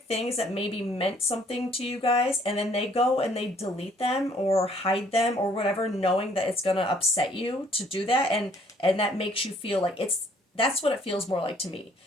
things that maybe meant something to you guys, and then they go and they delete them or hide them or whatever, knowing that it's gonna upset you to do that, and that makes you feel like that's what it feels more like to me.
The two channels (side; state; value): both; normal; correlation 0.62